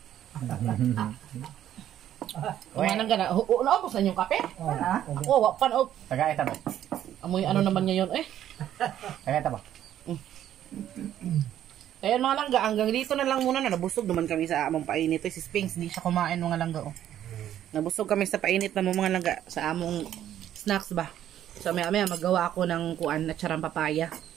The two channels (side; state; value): left; quieter; 11.3 dB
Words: Kumanan ka na. Naubos na yung kape? Ako, wapan o. Tagay ta ba. Amoy ano naman ngayon eh. Tagay ta ba. Kaya mga langga, hanggang dito na lang muna na. Nabusog naman kami sa among painit. Si Spinks, hindi siya kumain mga langga. Oh. Nabusog kami sa painit na mga langga sa among snacks ba. So, maya magawa ako ng kuan na charang papaya.